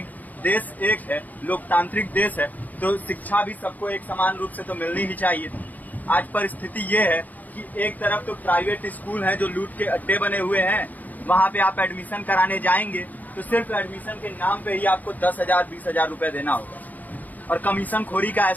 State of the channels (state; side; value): late; right; 0.081 ms